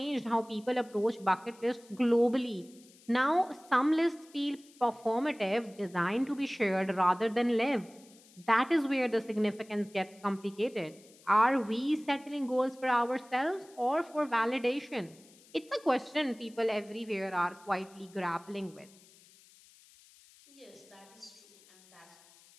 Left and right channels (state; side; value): noise; left; hiss, 26 dB below the sound